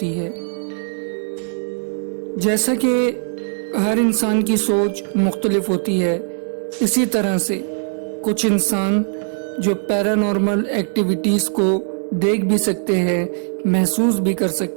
है। जैसा कि हर इंसान की सोच मुख्तलिफ होती है, इसी तरह से कुछ इंसान जो पैरानॉर्मल एक्टिविटीज़ को देख भी सकते हैं, महसूस भी कर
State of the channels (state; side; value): silent; left; digital silence